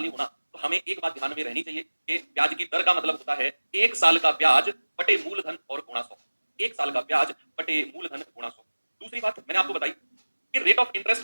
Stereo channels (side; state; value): both; inverted; correlation -1.00